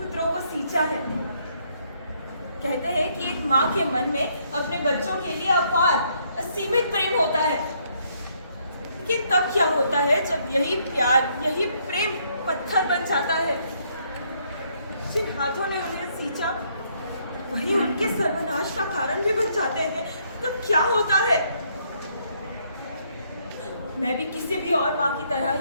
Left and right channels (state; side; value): inverted; both; correlation -0.70